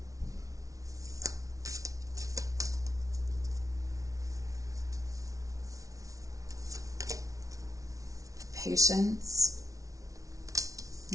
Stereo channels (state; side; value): late; left; 0.17 ms